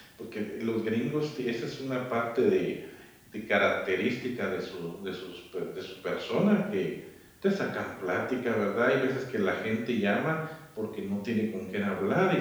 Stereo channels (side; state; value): both; identical; correlation 1.00